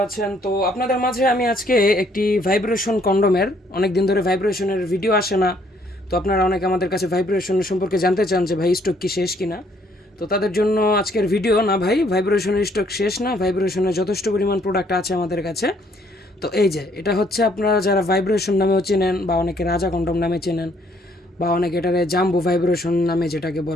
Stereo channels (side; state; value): both; normal; correlation 0.66